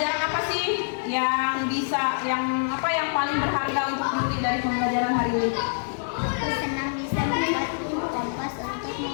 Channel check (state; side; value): silent; right; digital silence